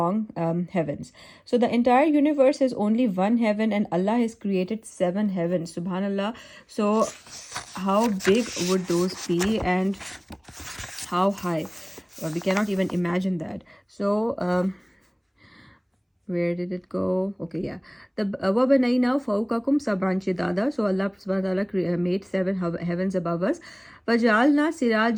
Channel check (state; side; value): identical; both; correlation 1.00